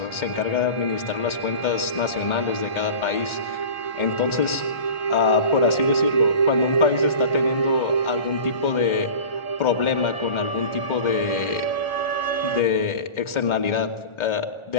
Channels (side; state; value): right; late; 1.4 ms